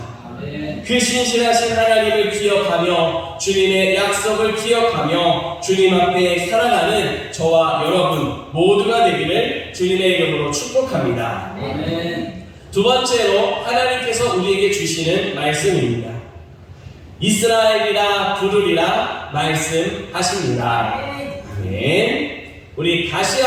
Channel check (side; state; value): both; identical; correlation 1.00